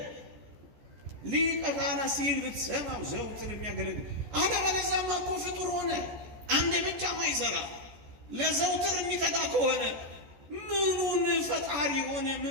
ሊቀ ካህናት ሲል ብትሰማው ዘውትር የሚያገለግል። አለበለዚያማ እኮ ፍጡር ሆነ፣ አንዴ ብቻ ማይሰራ ለዘውትር የሚተጋ ከሆነ ምኑን ፈጣሪ ሆነ?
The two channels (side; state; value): left; late; 14 ms